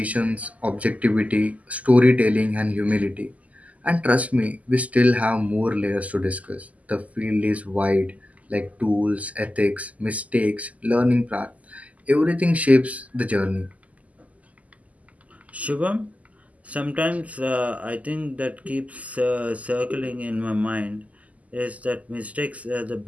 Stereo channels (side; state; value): left; late; 0.073 ms